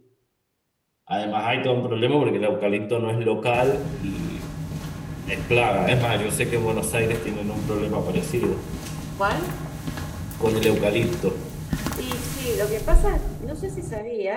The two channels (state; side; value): identical; both; correlation 1.00